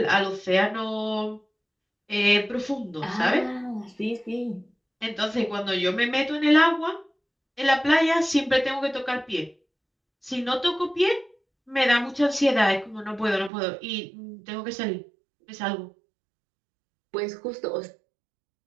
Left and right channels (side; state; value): left; drops out; at 13.5 s